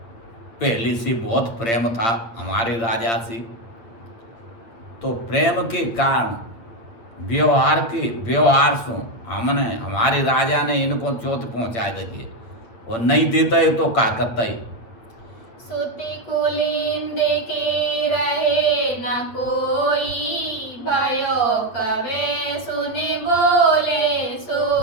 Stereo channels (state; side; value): late; right; 8.6 ms